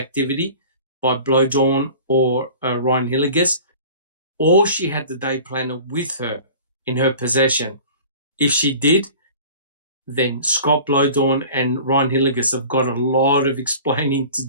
by Blowdawn or Ryan Hilligus, or she had the day planner with her in her possession. If she did, then Scott Blowdawn and Ryan Hilligus have got a lot of explaining to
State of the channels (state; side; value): inverted; both; correlation -0.42